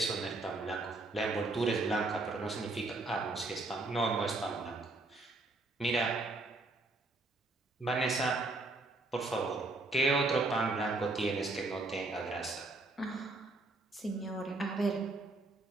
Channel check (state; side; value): quieter; left; 3.1 dB